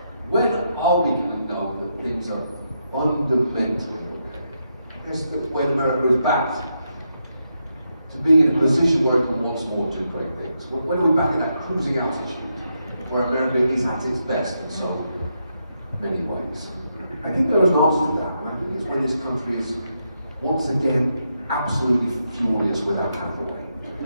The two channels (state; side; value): inverted; both; correlation -0.82